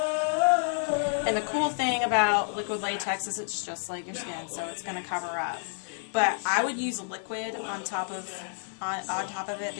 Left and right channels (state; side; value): silent; right; digital silence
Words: And the cool thing about liquid latex is it's just like your skin, so it's going to cover up. But I would use liquid on top of it